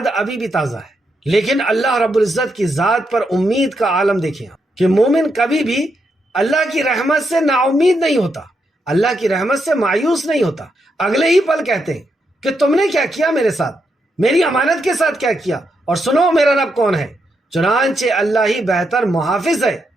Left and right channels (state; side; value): normal; both; correlation 0.81